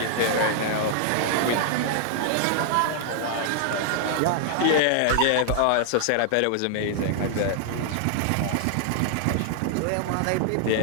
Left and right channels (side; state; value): both; different; correlation -0.01